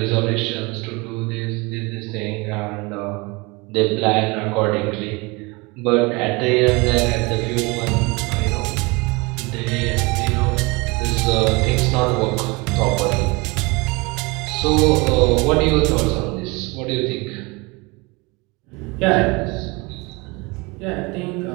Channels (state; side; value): quieter; left; 26.3 dB